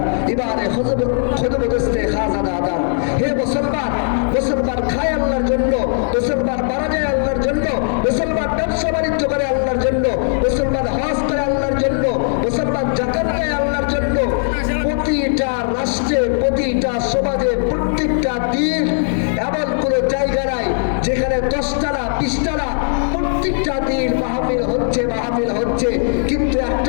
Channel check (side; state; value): right; silent; 67 dB below the other